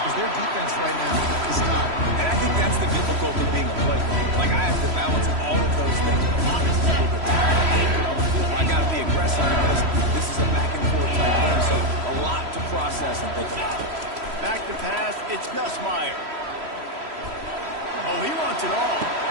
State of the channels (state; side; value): late; left; 3.1 ms